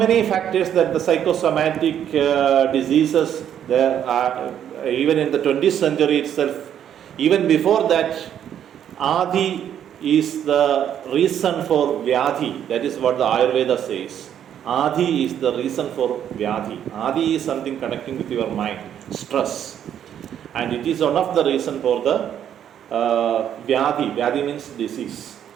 factors that the psychosomatic diseases there are even in the 20th century itself. Even before that, Adi is the reason for Vyadhi. That is what the Ayurveda says. Adi is the reason for Vyadhi. Adi is something connecting with your mind, stress. And it is one of the reason for the Vyadhi. Vyadhi means disease.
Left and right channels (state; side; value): quieter; left; 9.7 dB